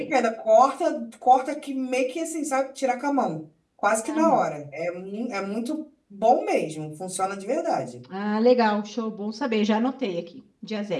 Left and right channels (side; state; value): both; identical; correlation 1.00